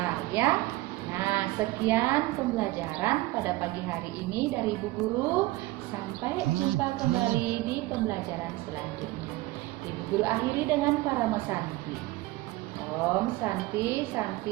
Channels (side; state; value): left; quieter; 19.3 dB